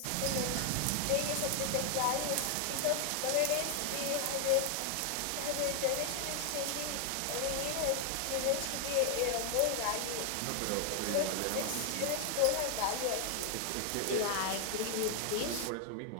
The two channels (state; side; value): different; both; correlation 0.00